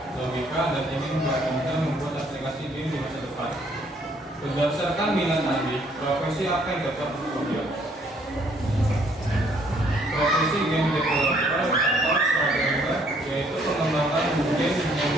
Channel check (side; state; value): both; normal; correlation 0.64